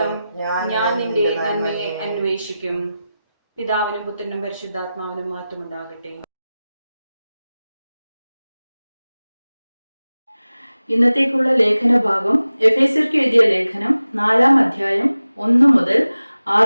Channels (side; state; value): both; inverted; correlation -0.95